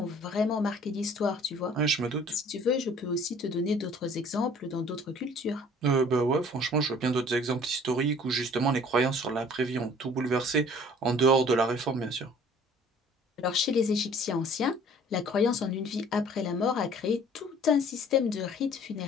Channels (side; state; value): both; normal; correlation 0.52